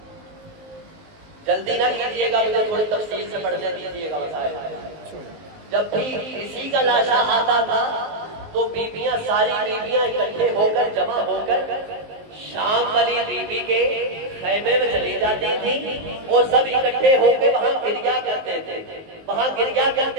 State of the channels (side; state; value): left; late; 19 ms